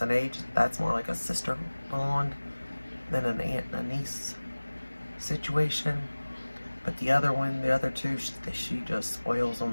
in age. That's more like a sister bond than an aunt and a niece situation. But the other one, the other two, she just spoils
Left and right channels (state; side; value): inverted; both; correlation -1.00